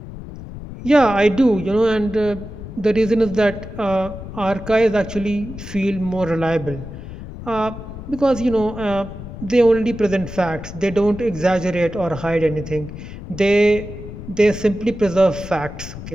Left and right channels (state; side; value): noise; left; rumble, 11 dB below the sound